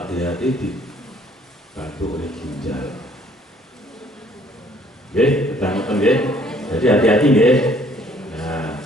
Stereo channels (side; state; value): both; normal; correlation 0.60